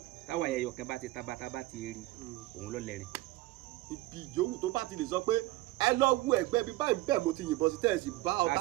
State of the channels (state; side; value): quieter; left; 18.5 dB